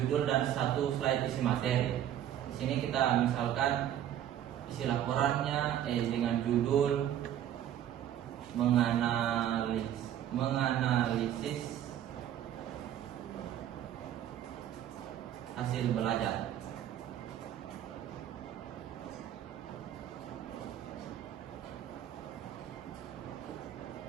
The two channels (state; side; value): quieter; left; 11.0 dB